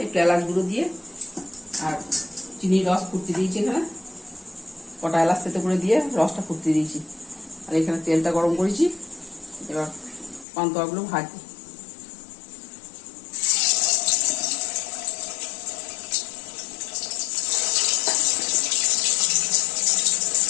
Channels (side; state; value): right; drops out; at 10.5 s